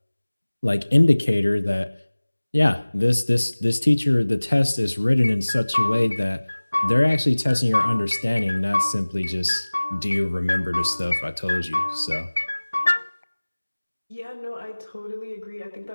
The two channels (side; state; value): both; inverted; correlation -1.00